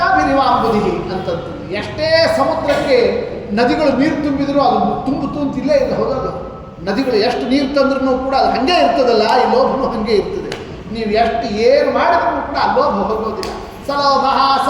ಅಂತಂತಂದು, ಎಷ್ಟೇ ಸಮುದ್ರಕ್ಕೆ ನದಿಗಳು ನೀರು ತುಂಬಿದ್ರು ಅದು ತುಂಬಿಲ್ಲೇ ಇಲ್ಲ, ಹೌದಲ್ಲ? ನದಿಗಳು ಎಷ್ಟು ನೀರು ತಂದ್ರೂ ಕೂಡ ಅದು ಹಾಗೆ ಇರ್ತದಲ್ಲ, ಈ ಲೋಭನೂ ಹಾಗೆ ಇರ್ತದೆ. ನೀವು ಎಷ್ಟು ಏನು ಮಾಡಿದ್ರೂ ಕೂಡ ಆ ಲೋಭ ಹೋಗೋದಿಲ್ಲ. ಸಲೋಭ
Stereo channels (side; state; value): both; identical; correlation 1.00